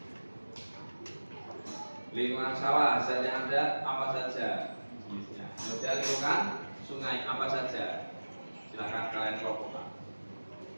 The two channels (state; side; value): inverted; both; correlation -1.00